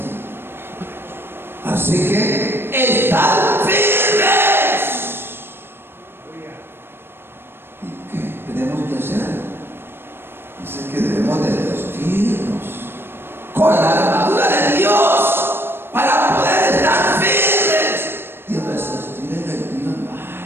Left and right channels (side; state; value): left; late; 0.11 ms